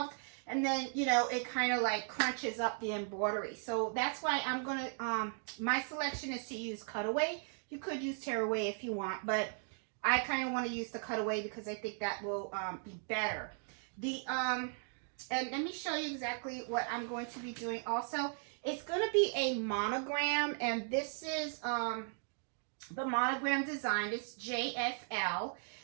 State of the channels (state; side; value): silent; left; 53 dB below the other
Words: and then, you know, it kind of like crunches up the embroidery. So that's why I'm going to, my selection is to use cutaway. You could use tearaway if you want, but I kind of want to use the cutaway because I think that will be better. And let me show you exactly what I'm going to be doing also. It's going to be a monogram, and this is the monogram design. It's JFL,